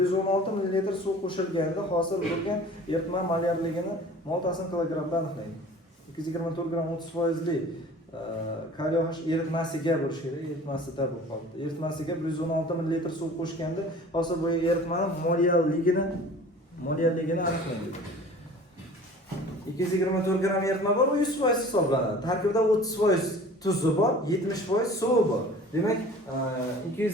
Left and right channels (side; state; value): both; normal; correlation 0.45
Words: ml suv qo'shilganda hosil bo'lgan eritma molyarligini moltasini kilogramda aniqlaydi. 224 gram 30% kaliy OH eritmasiga bo'lishi kerak, eritmasida bo'lib qoldi. Eritmasiga 116 ml suv qo'shganda hosil bo'lgan eritmaning moliyalligini aniqlaydi. 224 gram eritma bor, u 100% hisoblanadi. Tarkibida 30% tuzi bor, 70% suvi bor. Demak,